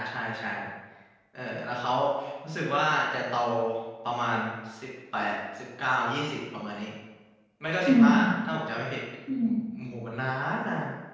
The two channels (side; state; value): both; identical; correlation 1.00